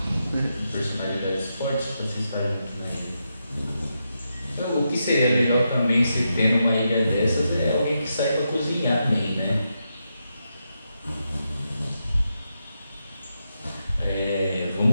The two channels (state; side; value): inverted; both; correlation -0.85